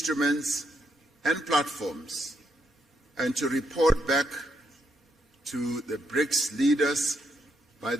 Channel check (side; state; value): both; normal; correlation 0.77